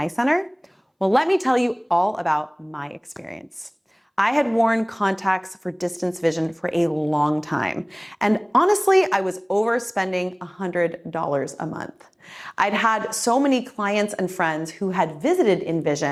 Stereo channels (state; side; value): identical; both; correlation 1.00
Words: Center? Well, let me tell you all about my experience. I had worn contacts for distance vision for a long time, and honestly, I was overspending $100 a month. I'd had so many clients and friends who had visited